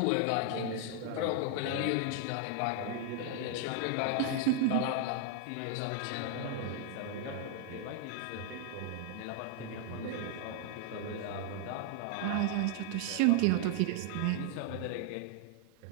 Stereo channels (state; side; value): different; both; correlation 0.00